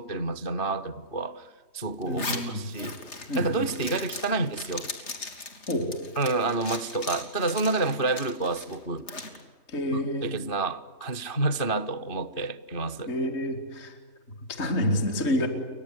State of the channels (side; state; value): right; late; 3.3 ms